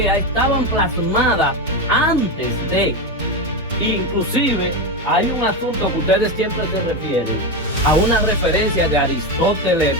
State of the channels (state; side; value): normal; both; correlation 0.14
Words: estaban plasmadas antes de, inclusive hay un asunto que ustedes siempre se refieren a una referencia de Aristóteles,